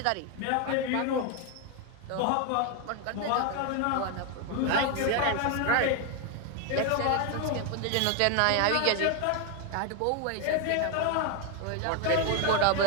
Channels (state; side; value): different; both; correlation 0.01